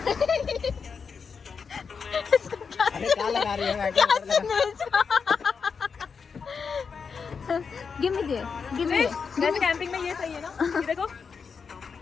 अरे क्या लगा रही है? Give me there। वैसे कैंपिंग में ये सही है ना। ये देखो।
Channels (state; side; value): quieter; right; 5.7 dB